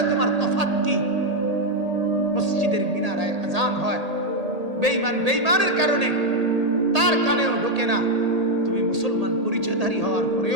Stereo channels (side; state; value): left; late; 1.8 ms